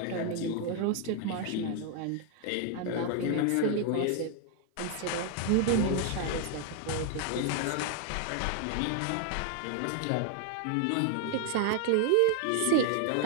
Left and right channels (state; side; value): different; both; correlation 0.00